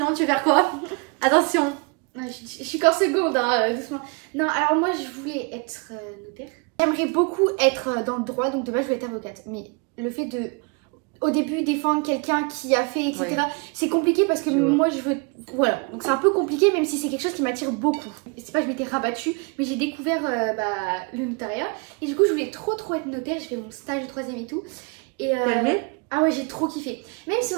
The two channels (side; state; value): left; quieter; 31.9 dB